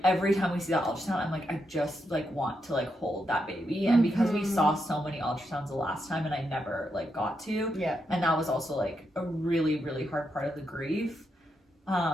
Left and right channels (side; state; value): both; normal; correlation 0.82